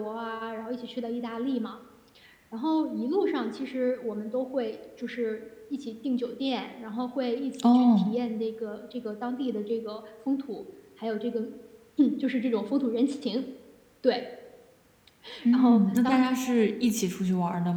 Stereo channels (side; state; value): both; identical; correlation 1.00